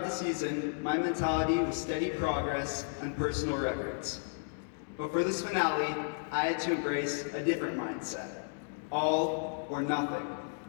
the season, my mentality was steady progress and personal records. But for this finale, I had to embrace a different mindset, all or nothing.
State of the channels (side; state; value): right; silent; digital silence